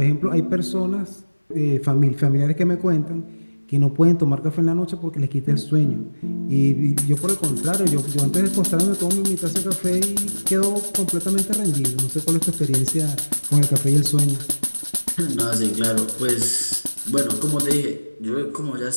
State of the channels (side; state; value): both; inverted; correlation -1.00